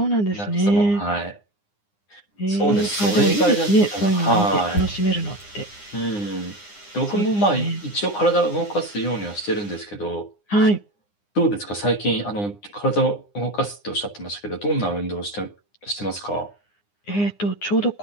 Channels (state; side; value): late; right; 9.8 ms